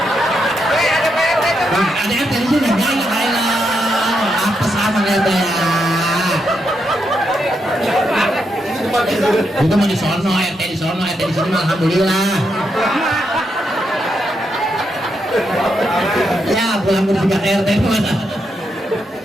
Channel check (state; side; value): normal; both; correlation 0.81